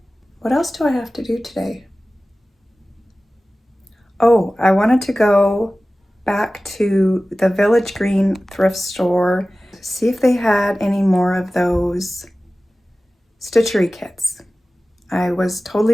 What else do I have to do today? Oh, I wanted to go back to the Village Green thrift store, see if they had any more of those stitchery kits. I was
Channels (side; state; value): both; normal; correlation 0.96